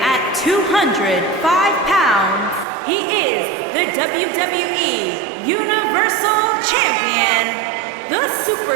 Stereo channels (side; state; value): left; drops out; at 2.7 s